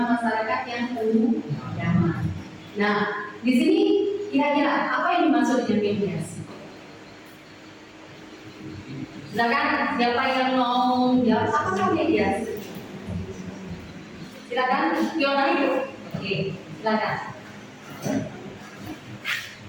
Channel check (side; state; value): both; identical; correlation 1.00